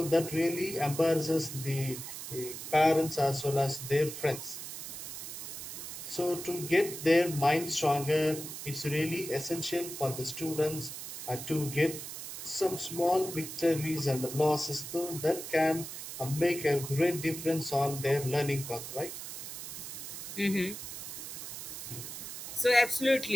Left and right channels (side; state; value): right; noise; hiss, 8 dB below the sound